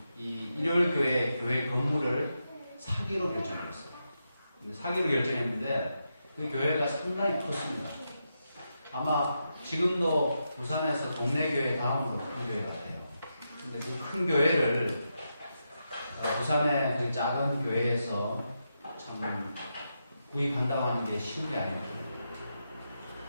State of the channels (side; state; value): both; inverted; correlation -0.85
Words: 이 일요일교회 교회 건물을 사기로 결정했어요. 사기로 결정했는데 그 교회가 상당히 컸습니다. 아마 지금도 부산에서 동네 교회 다음으로 큰 교회 같아요. 근데 그 큰 교회를 부산의 그 작은 교회에서 참 구입한다고 하는 게 쉬운 게 아니거든요.